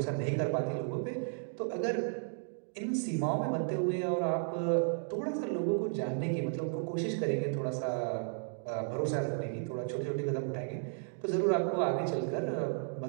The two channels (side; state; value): left; silent; digital silence